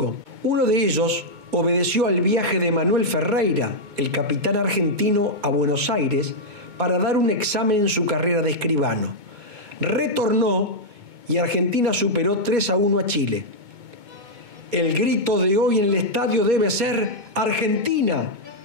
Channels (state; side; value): late; left; 2.2 ms